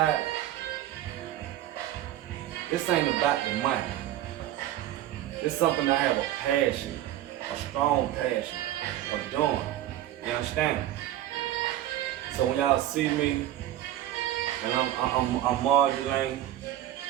This ain't about the money. It's something I have a passion, a strong passion of doing. You understand? So when y'all see me, and I'm modulating,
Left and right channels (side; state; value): left; quieter; 13.0 dB